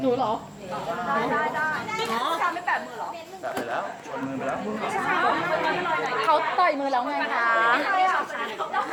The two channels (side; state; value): both; identical; correlation 1.00